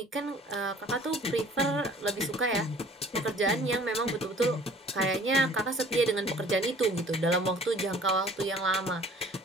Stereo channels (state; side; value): normal; both; correlation 0.51